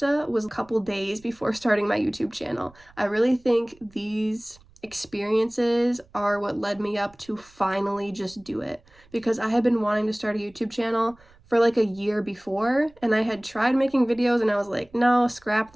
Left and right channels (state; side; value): noise; right; rumble, 28 dB below the sound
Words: was a couple days before starting my YouTube channel. I really think these experiences are what led me up to finally just do it, because I had been wanting to start a YouTube channel for like a year before, and I had tried making videos and I was like, no, scrap